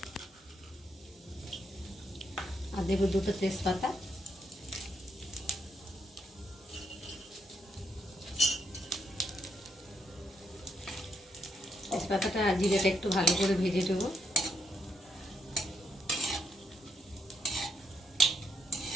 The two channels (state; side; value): normal; both; correlation 0.77